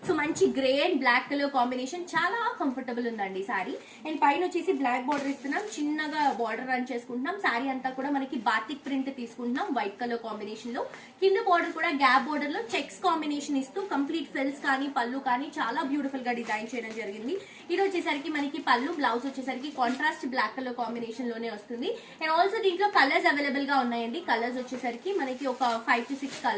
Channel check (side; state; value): both; identical; correlation 1.00